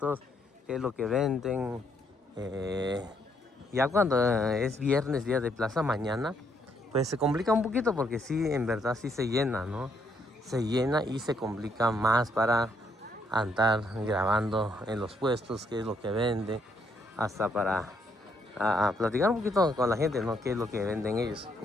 qué es lo que venden. Ya cuando es viernes, día de plaza mañana, pues se complica un poquito porque sí, en verdad sí se llena, ¿no? Se llena y se complica más para andar grabando en los puestos, qué es lo que vende, hasta para platicar un poquito con la gente, ¿no? Qué es lo que venden ellos.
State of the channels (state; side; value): normal; both; correlation 0.72